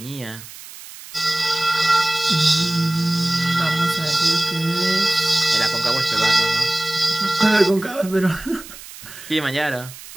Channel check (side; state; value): right; noise; hiss, 16 dB below the sound